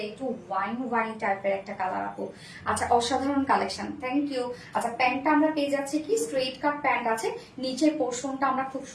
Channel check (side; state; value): both; identical; correlation 1.00